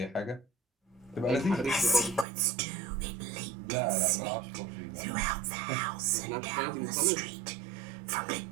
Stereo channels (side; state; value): left; drops out; at 2.2 s